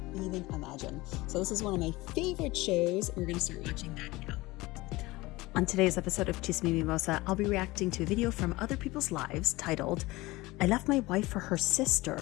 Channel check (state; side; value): quieter; right; 20.7 dB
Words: even imagine. So this is one of my favorite shows, and we're going to start watching that now. On today's episode of Chismimimosa, I'll be reacting to a video from Other People's Lives titled, I Left My Wife for Her